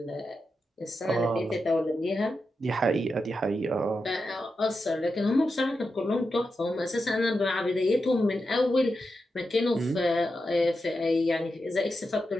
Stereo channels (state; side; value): normal; both; correlation 0.88